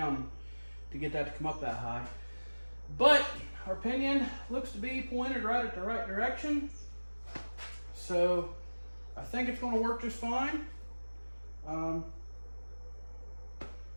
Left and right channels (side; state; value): both; inverted; correlation -1.00